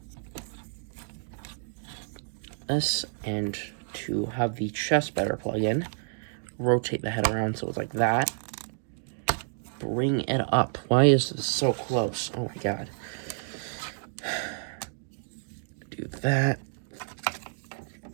this, and to have the chest better plug in, rotate the head around so it's like that. Bring it up. Why is this so close? Oh my god. Do that.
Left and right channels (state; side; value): silent; left; digital silence